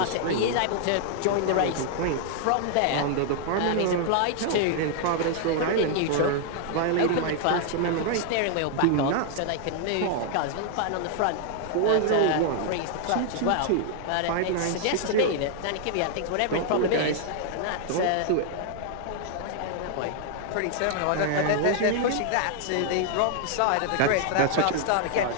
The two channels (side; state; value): both; different; correlation 0.00